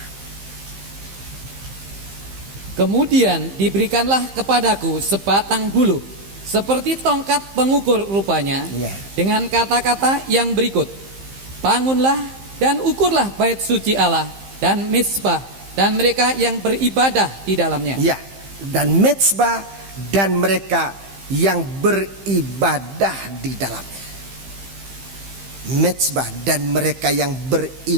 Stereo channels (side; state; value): left; late; 15 ms